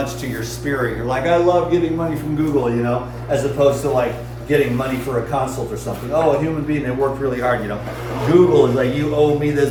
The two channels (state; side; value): identical; both; correlation 1.00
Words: to your spirit. You're like, I love getting money from Google, as opposed to like getting money for a consult or something. Oh, a human being that worked really hard, Google is like, you owe me this